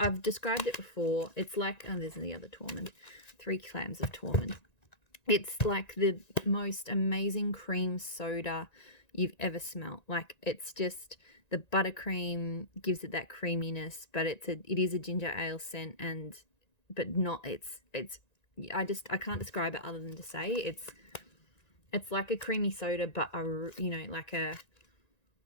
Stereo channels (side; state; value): right; late; 1.9 ms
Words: described it before. It's like, oh, there's the other Tormund. 3 clams of Tormund. It's like the most amazing cream soda you've ever smelt. Like, it's just, the buttercream gives it that creaminess, but it is a ginger ale scent, but not, I can't describe it other than to say it's like a creamy soda, but like a